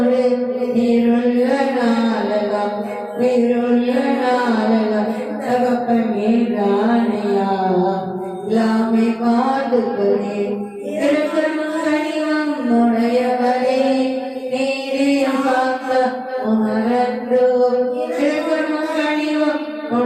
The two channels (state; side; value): identical; both; correlation 1.00